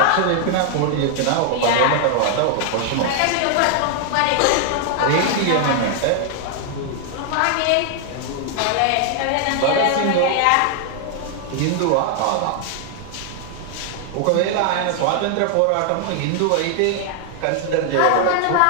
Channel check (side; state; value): both; different; correlation 0.00